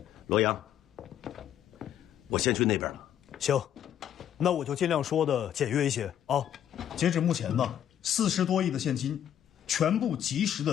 罗阳，我先去那边了，行，那我就尽量说的简约一些啊。截止目前呢，40多亿的现金，全部及时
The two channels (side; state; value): right; quieter; 10.2 dB